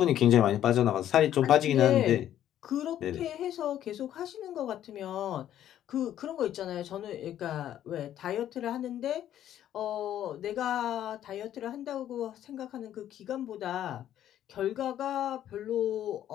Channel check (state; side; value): quieter; right; 11.4 dB